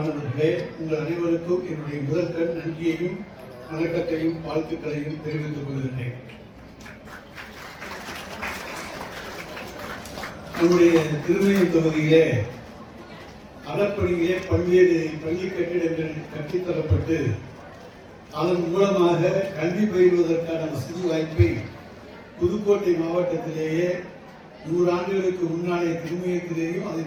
உங்கள் அனைவருக்கும் என்னுடைய முதற்கண் நன்றியையும் வணக்கத்தையும் வாழ்த்துக்களையும் தெரிவித்துக் கொள்கிறேன். நம்முடைய திருமயம் தொகுதியிலே அறப்பணியிலே பல்வேறு பள்ளி கட்டிடங்கள் கட்டித்தரப்பட்டு அதன் மூலமாக கல்வி பயிலுவதற்கான வசதி வாய்ப்பை புதுக்கோட்டை மாவட்டத்திலேயே 100 ஆண்டுகளுக்கு முன்னாலே திருமயத்திலேயும்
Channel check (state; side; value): identical; both; correlation 1.00